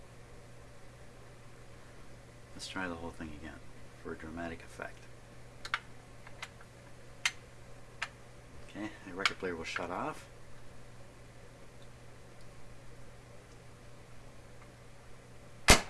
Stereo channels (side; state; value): both; identical; correlation 1.00